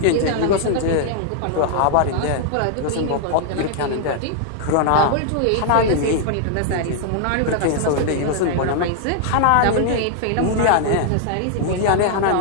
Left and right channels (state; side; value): different; both; correlation -0.01